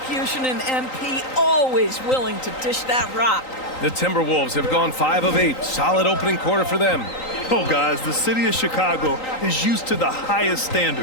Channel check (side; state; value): right; late; 3.9 ms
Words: in MP, always willing to dish that rock. The Timberwolves have gone 5 of 8. Solid opening quarter for them. oh guys, the city of Chicago is used to the highest